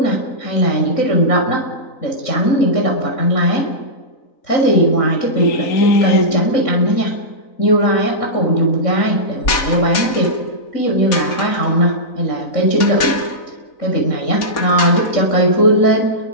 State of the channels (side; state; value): right; late; 3.9 ms